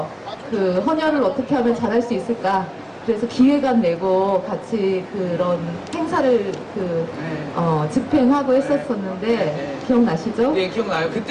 헌혈을 어떻게 하면 잘할 수 있을까? 그래서 기획안 내고 같이 그런 행사를 집행하고 했었었는데 기억나시죠? 네, 기억나요.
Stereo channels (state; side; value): identical; both; correlation 1.00